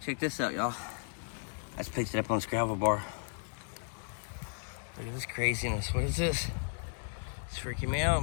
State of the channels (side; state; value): right; silent; digital silence